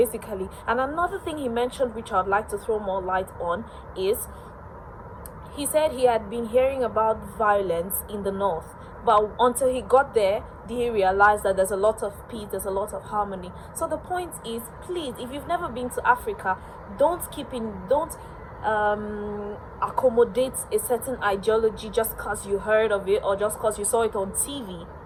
And another thing he mentioned, which I'd like to throw more light on, is he said he had been hearing about violence in the north, but until he got there, he realized that there's a lot of peace, there's a lot of harmony. So the point is, please, if you've never been to Africa, don't accommodate a certain ideology just because you heard of it or just because you saw it on TV.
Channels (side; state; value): both; identical; correlation 1.00